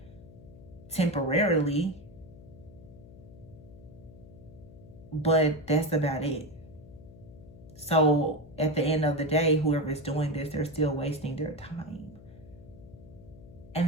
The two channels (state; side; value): noise; left; hum, 19 dB below the sound